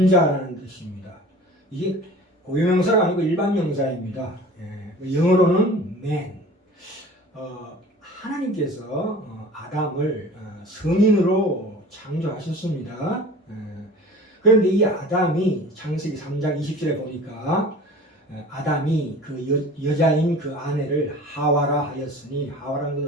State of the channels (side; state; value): both; normal; correlation 0.42